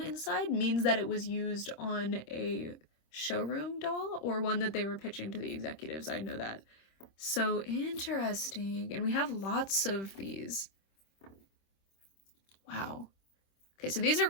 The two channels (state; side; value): late; right; 26 ms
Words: means that it was used on a showroom doll or one that they were pitching to the executives. I know that. So interesting. And we have lots of these. Wow. Okay, so these are